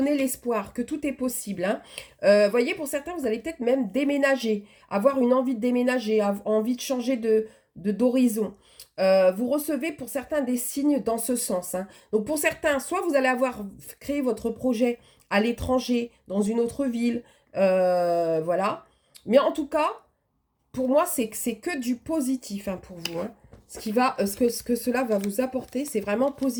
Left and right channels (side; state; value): both; identical; correlation 1.00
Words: l'espoir que tout est possible. Hein. Voyez, pour certains, vous allez peut-être même déménager, avoir une envie de déménager, envie de changer d'horizon. Vous recevez pour certains des signes dans ce sens. Hein. Donc pour certains, soit vous allez avoir créé votre projet à l'étranger, dans une autre ville, voilà. Mais en tout cas, pour moi, c'est que du positif hein, pour vous. Hein. Ce que cela va vous apporter, c'est vraiment